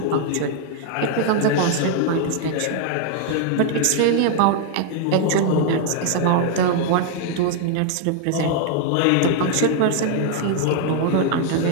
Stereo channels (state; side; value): different; both; correlation 0.00